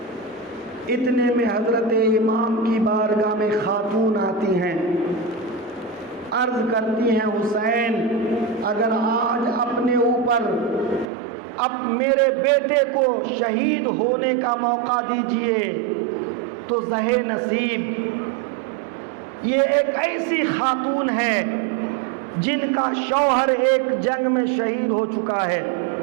اتنے میں حضرت امام کی بارگاہ میں خاتون آتی ہیں، عرض کرتی ہیں، حسین اگر آج اپنے اوپر اب میرے بیٹے کو شہید ہونے کا موقع دیجئے تو زہے نصیب۔ یہ ایک ایسی خاتون ہے جن کا شوہر ایک جنگ میں شہید ہو چکا ہے،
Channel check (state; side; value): drops out; left; at 11.1 s